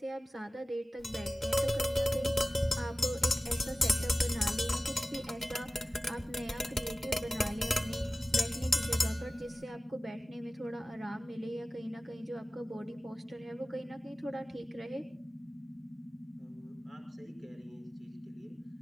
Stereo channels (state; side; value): normal; both; correlation 0.96